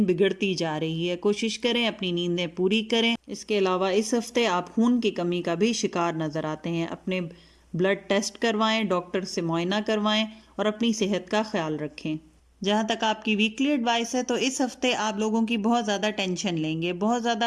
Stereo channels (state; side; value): identical; both; correlation 1.00